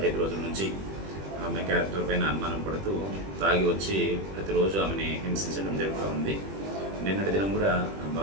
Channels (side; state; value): left; late; 21 ms